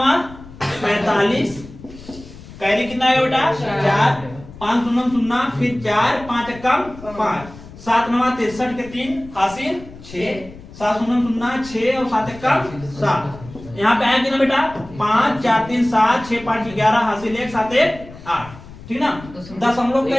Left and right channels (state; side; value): noise; left; rumble, 17 dB below the sound